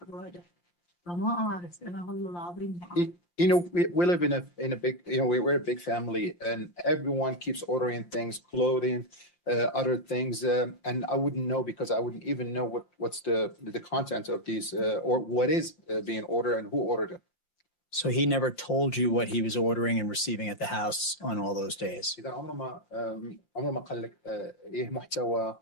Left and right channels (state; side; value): late; right; 5.7 ms